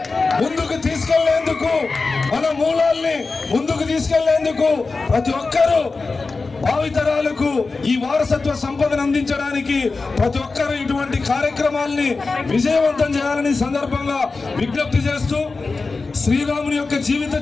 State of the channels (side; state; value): right; quieter; 4.0 dB